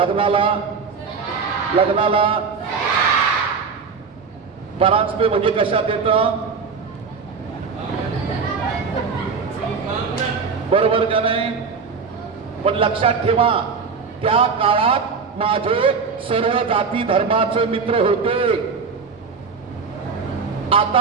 लग्नाला परांजपे म्हणजे कशात येतं, बरोबर का नाही? पण लक्षात ठेवा, त्या काळात माझे सर्व जाती धर्माचे मित्र होते।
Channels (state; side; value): quieter; left; 5.3 dB